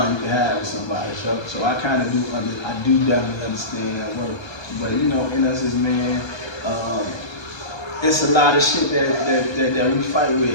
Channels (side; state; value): right; late; 1.3 ms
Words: you can have with somebody. So I kind of do definitely understand that work. But in us as men, it's a lot of shit that we fight